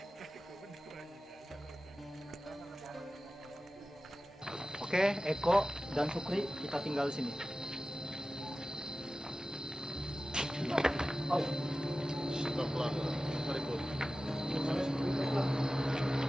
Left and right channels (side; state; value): both; normal; correlation 0.95